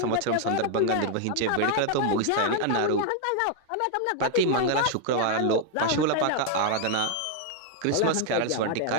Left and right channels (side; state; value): both; different; correlation 0.00